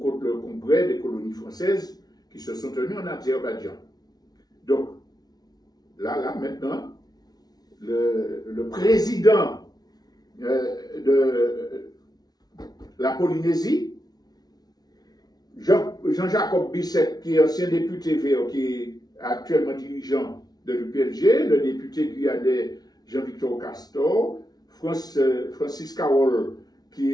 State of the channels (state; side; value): late; right; 0.19 ms